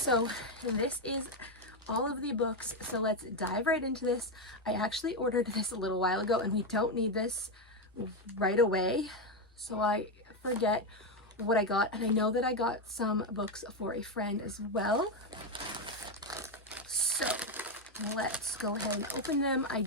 this is all of the books, so let's dive right into this. I actually ordered this a little while ago and we don't need this right away, so I forget what I got, and I know that I got some books for a friend as well. So let's go ahead and open them. I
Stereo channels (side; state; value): both; normal; correlation 0.07